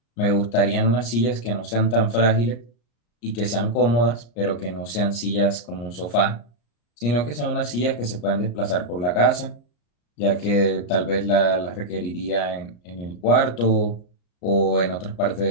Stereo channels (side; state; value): right; late; 34 ms